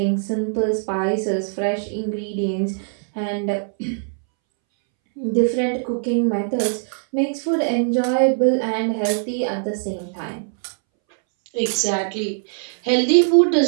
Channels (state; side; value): silent; left; 64 dB below the other